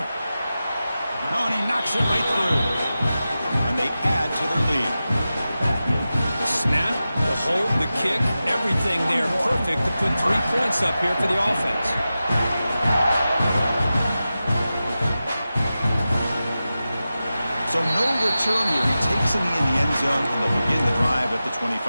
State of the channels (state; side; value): inverted; both; correlation -0.93